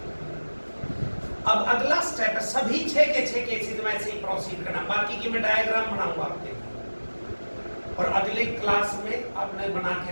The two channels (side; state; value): both; inverted; correlation -1.00